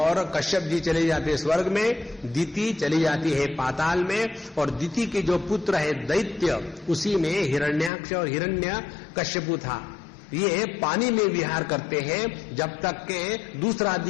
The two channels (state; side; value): drops out; right; at 7.9 s